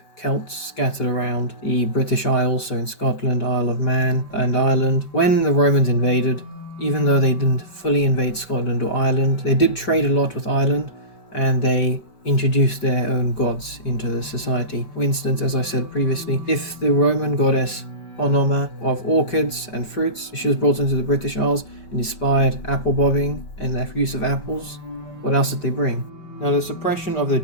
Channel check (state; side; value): late; right; 5.2 ms